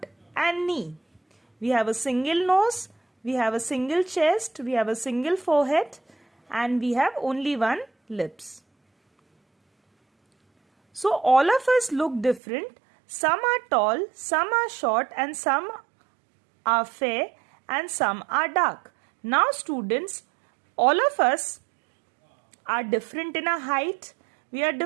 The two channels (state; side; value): drops out; left; at 12.4 s